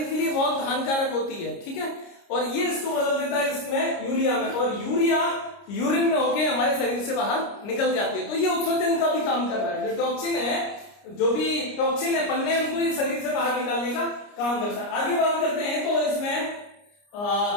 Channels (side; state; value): right; late; 29 ms